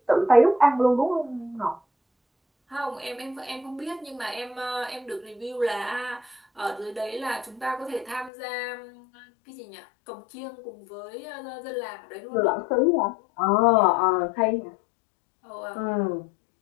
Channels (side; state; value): right; drops out; at 8.3 s